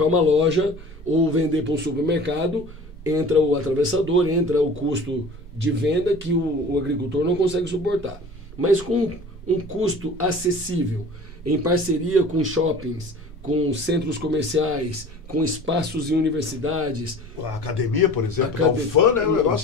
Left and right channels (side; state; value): both; normal; correlation 0.43